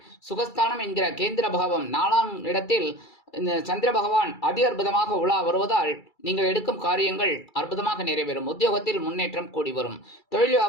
சுகஸ்தானம் என்கிற கேந்திர பாவம் 4ஆம் இடத்தில் சந்திர பகவான் அதி அற்புதமாக உலா வருவதால் நீங்கள் எடுக்கும் காரியங்கள் அற்புதமாக நிறைவேறும். உத்தியோகத்தில் முன்னேற்றம் கூடி வரும். தொழில்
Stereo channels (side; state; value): right; late; 2.3 ms